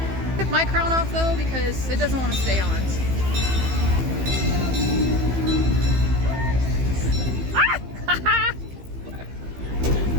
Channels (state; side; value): late; left; 15 ms